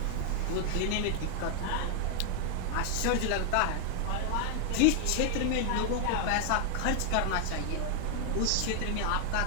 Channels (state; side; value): different; both; correlation 0.00